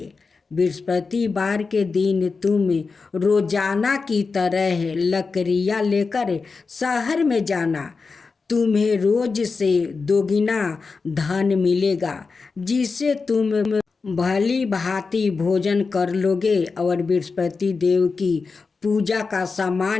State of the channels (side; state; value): right; quieter; 4.5 dB